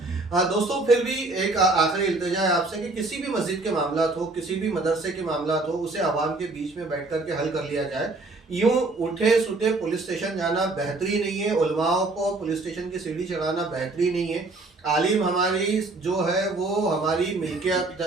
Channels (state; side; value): quieter; left; 3.2 dB